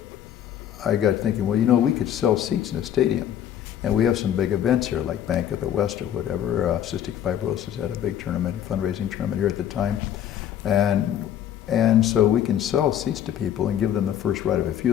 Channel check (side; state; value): right; quieter; 10.4 dB